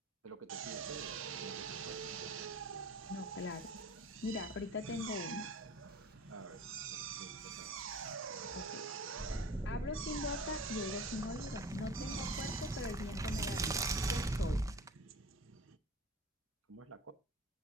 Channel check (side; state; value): both; normal; correlation 0.40